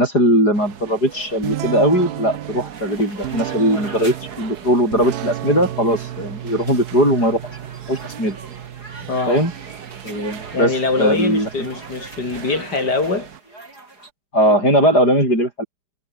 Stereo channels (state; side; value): late; right; 4.8 ms